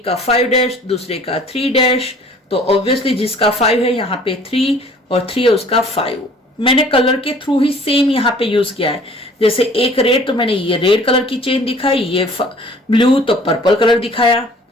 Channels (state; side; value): normal; both; correlation 0.52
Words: का 5 डैश दूसरे का 3 डैश। तो ऑब्वियसली जिसका 5 है यहाँ पे 3 और 3 है उसका 5। मैंने कलर के थ्रू ही सेम यहाँ पे यूज किया है। जैसे एक रेड, तो मैंने ये रेड कलर की चेन दिखाई, ये ब्लू तो पर्पल कलर दिखाया।